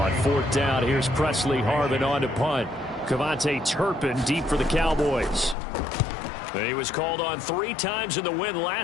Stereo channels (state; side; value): drops out; right; at 5.6 s